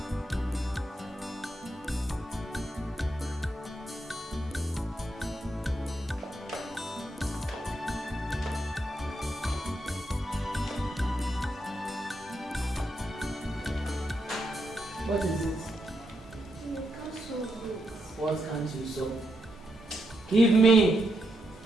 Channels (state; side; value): normal; both; correlation 0.81